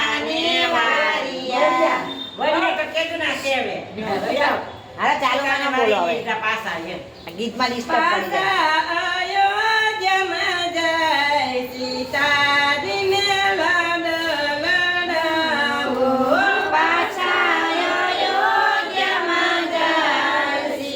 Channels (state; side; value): identical; both; correlation 1.00